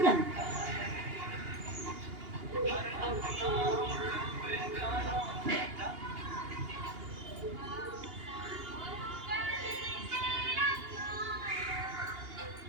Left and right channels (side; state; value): left; late; 2.8 ms